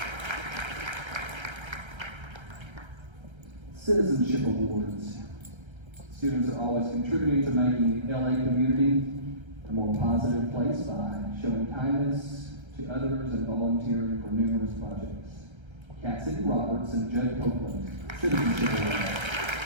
Citizenship Awards. Students are always contributing to making the LA community a more positive place by showing kindness to others and volunteering for numerous projects. Cassidy Roberts and Judd Copeland, Citizenship Awards.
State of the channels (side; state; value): left; late; 1.3 ms